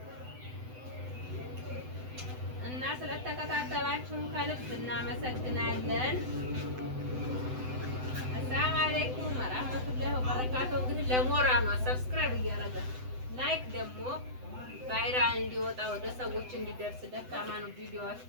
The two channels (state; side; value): late; left; 7.9 ms